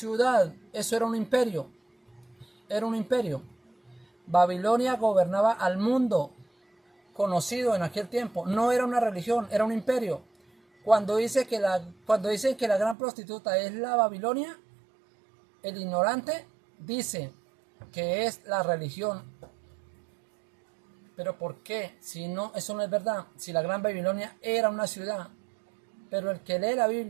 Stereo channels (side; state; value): left; drops out; at 13.0 s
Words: eso era un imperio. Era un imperio. Babilonia gobernaba al mundo conocido en aquel tiempo. No era una religión, era un imperio. Cuando dicen que la gran prostituta es la Babilonia, el ignorante dice que es la religión. Pero ¿por qué? Si no, eso no es verdad. Si la gran Babilonia era una ciudad. Pero el que lee la